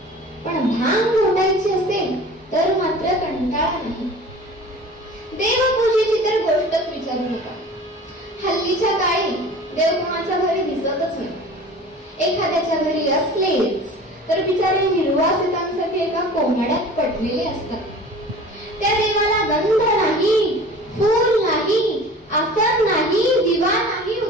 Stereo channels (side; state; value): both; normal; correlation 0.41